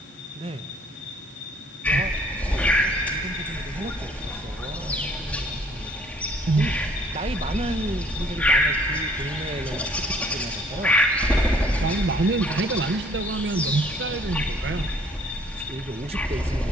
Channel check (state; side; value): normal; both; correlation 0.59